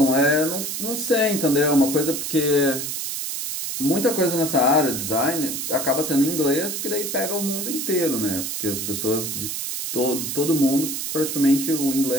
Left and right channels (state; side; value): noise; right; hiss, 4 dB below the sound